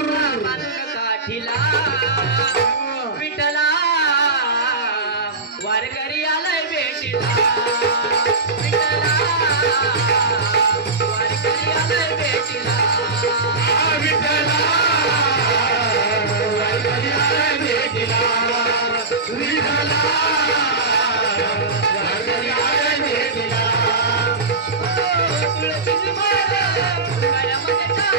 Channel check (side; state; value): left; quieter; 3.6 dB